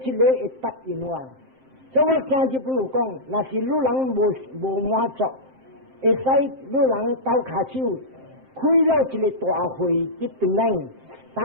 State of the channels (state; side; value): late; left; 7.6 ms